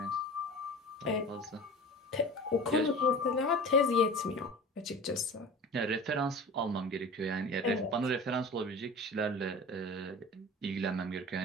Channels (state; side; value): normal; both; correlation 0.37